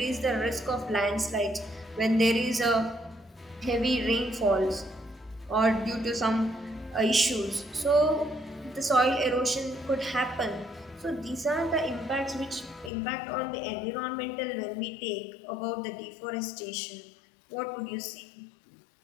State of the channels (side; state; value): right; drops out; at 12.9 s